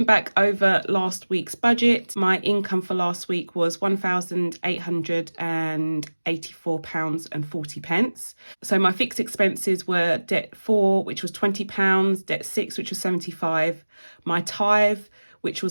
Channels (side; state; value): both; inverted; correlation -1.00